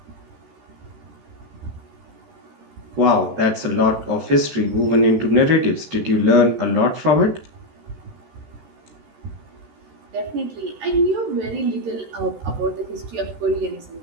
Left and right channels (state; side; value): late; left; 13 ms